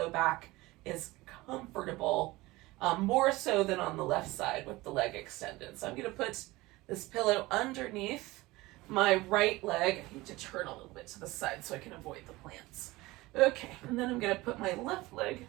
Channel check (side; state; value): left; quieter; 20.2 dB